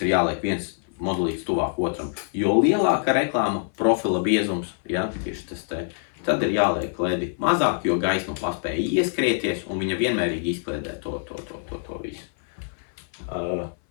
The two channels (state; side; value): silent; right; 59 dB below the other